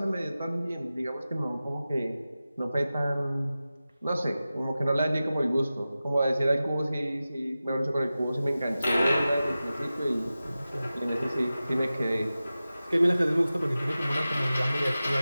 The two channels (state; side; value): inverted; both; correlation -0.95